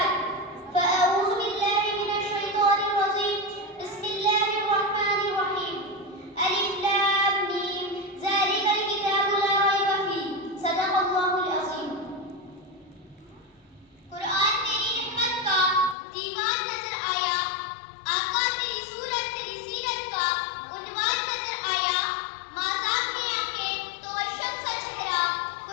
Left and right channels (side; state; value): right; drops out; at 16.0 s